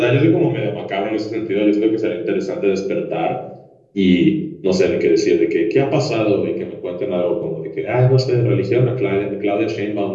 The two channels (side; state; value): both; identical; correlation 1.00